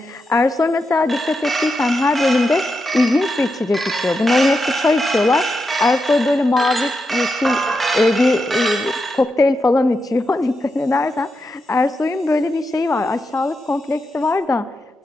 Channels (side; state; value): both; normal; correlation 0.87